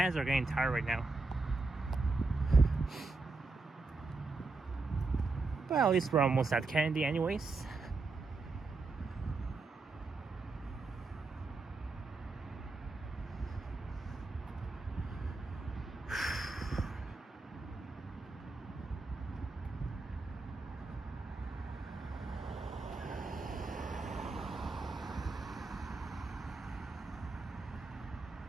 are getting tired right now. Well, at least we're almost at Kennedy anyways.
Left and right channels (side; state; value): left; quieter; 3.7 dB